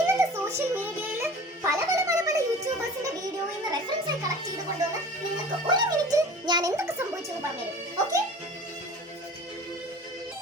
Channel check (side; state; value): both; normal; correlation 0.42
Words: സോഷ്യൽ മീഡിയയിൽ പല യൂട്യൂബേഴ്സിന്റെ വീഡിയോയിൽ നിന്ന് റെഫറൻസ് ആയി കളക്ട് ചെയ്ത് കൊണ്ടുവന്ന് നിങ്ങൾക്ക് ഒരു മിനിറ്റ് ഞാൻ എന്തൊക്കെ സംഭവിച്ചു എന്ന് പറഞ്ഞുതരും. ഓക്കെ?